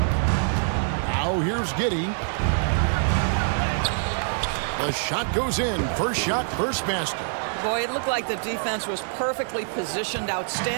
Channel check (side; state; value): left; silent; 62 dB below the other